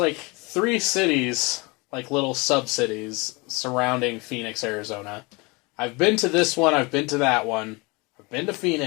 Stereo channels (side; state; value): right; quieter; 26.7 dB